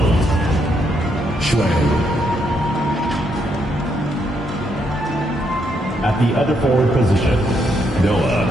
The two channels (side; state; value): both; normal; correlation 0.76